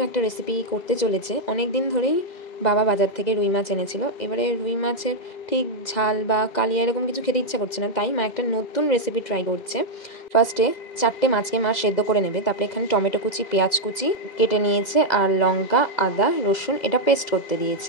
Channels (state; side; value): late; right; 2.0 ms